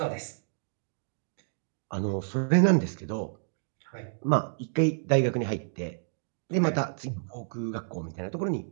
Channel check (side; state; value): left; silent; digital silence